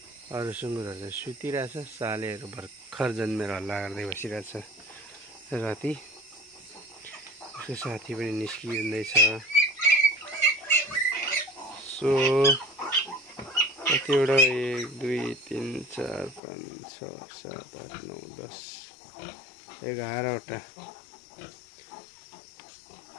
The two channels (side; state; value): right; drops out; at 16.4 s